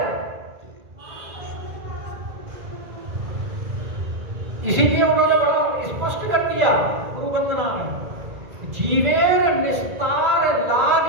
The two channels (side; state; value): left; late; 2.0 ms